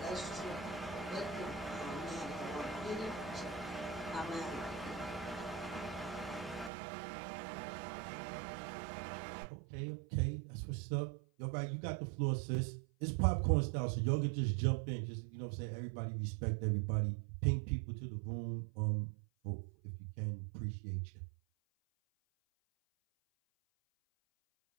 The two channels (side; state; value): left; drops out; at 6.7 s